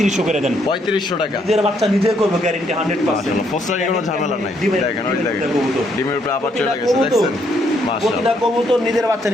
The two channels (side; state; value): both; normal; correlation 0.72